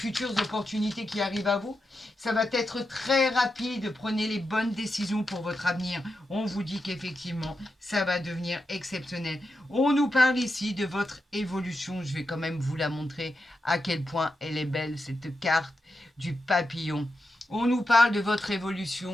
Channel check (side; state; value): both; normal; correlation 0.88